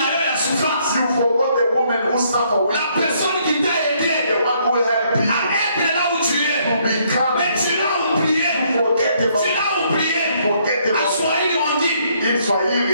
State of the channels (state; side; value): inverted; both; correlation -0.69